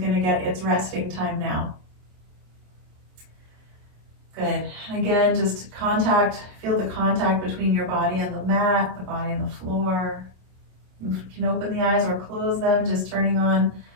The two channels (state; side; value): late; left; 27 ms